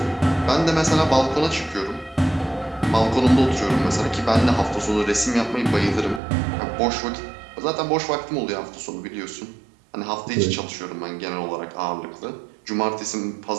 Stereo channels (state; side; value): drops out; left; at 6.2 s